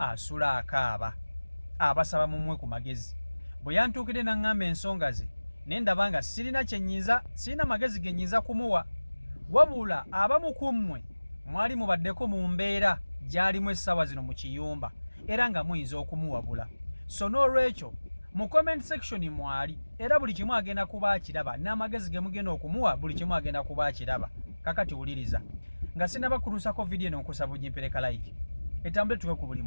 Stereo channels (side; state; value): both; inverted; correlation -1.00